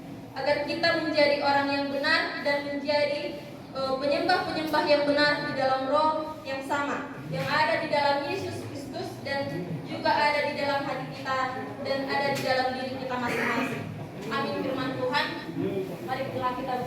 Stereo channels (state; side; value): identical; both; correlation 1.00